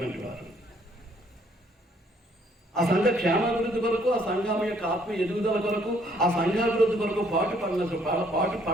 వారు, ఆ సంఘ క్షేమాభివృద్ధి కొరకు, ఆ సంఘం యొక్క ఆత్మీయ ఎదుగుదల కొరకు, ఆ సంఘాభివృద్ధి కొరకు పాటు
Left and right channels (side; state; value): both; normal; correlation 0.65